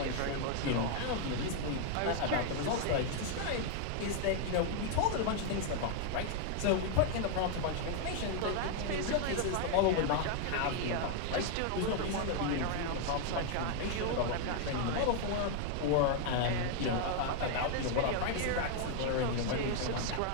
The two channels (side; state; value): both; different; correlation 0.00